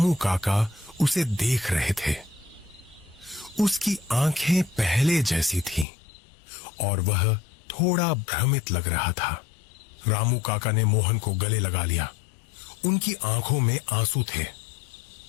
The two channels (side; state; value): right; drops out; at 5.9 s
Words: काका उसे देख रहे थे। उसकी आंखें पहले जैसी थीं और वह थोड़ा भ्रमित लग रहा था। रामू काका ने मोहन को गले लगा लिया। उनकी आंखों में आंसू थे।